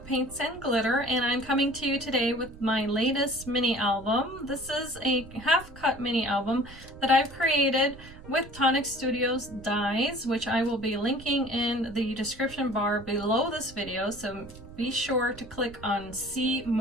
Paints and Glitter, and I'm coming to you today with my latest mini album. This is a half-cut mini album that I've created with Tonic Studios dies, which I will be linking in the description bar below this video, so be sure to click on see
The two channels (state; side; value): noise; right; rumble, 18 dB below the sound